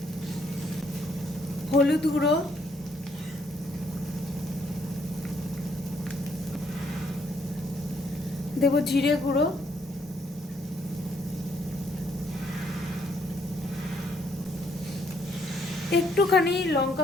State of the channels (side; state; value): both; normal; correlation 0.70